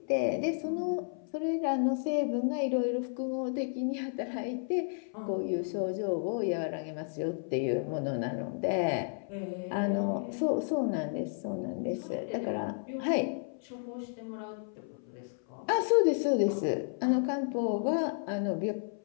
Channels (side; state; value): right; silent; 56 dB below the other